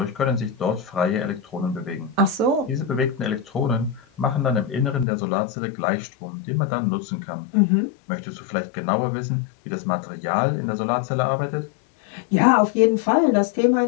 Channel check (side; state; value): right; drops out; at 5.1 s